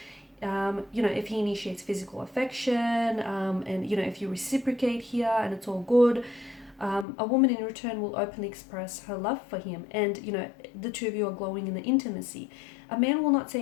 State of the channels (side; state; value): right; drops out; at 7.1 s